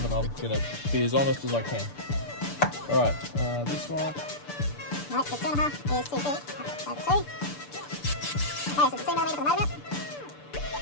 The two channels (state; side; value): late; right; 6.8 ms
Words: and I'm going to be as honest as I can. Alright, this one. Right, the 2.5 is too big. So 2. Okay, so the 2mm for the motor mount.